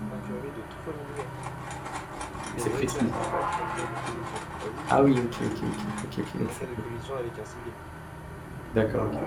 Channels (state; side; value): identical; both; correlation 1.00